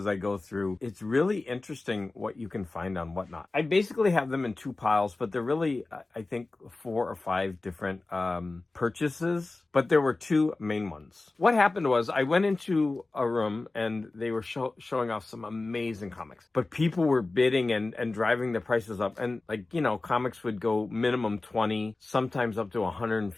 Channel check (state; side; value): quieter; right; 3.3 dB